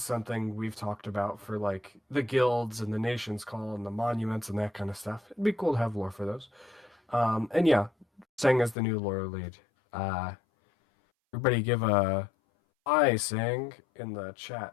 we've talked about for like the guilds and the nation's call and the monuments and that kind of stuff. It'd be cool to have lore for those. And yeah, Sang as the new lore lead. Everybody give a saying in the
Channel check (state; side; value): drops out; right; at 8.8 s